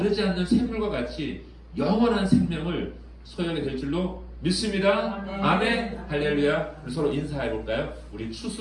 않는 샘물과 같이 영원한 생명을 소유하게 될 줄로 믿습니다. 아멘. 할렐루야. 서로 인사해 볼까요? 우리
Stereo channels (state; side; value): identical; both; correlation 1.00